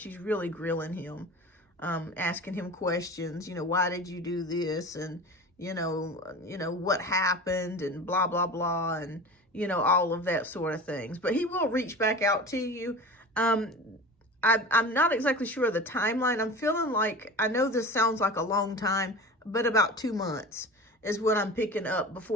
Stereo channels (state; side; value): normal; both; correlation 0.34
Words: really grilling him, asking him questions. Why did you do this? And what happened, and blah, blah, blah, and all of that sort of things. But he will reach back out to you. I'm not exactly sure of the timeline. I'm feeling like, I know this sounds like a long time, but about 2 months is what I'm picking up